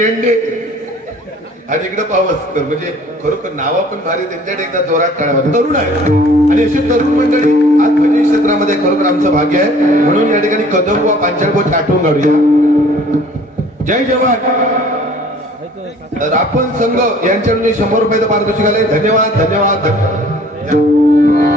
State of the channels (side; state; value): both; normal; correlation 0.52